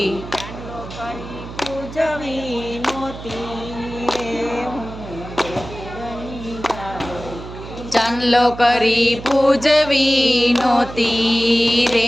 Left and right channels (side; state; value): right; noise; hum, 12 dB below the sound